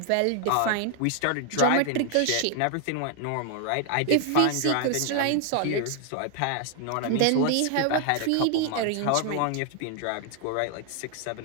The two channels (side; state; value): both; different; correlation 0.00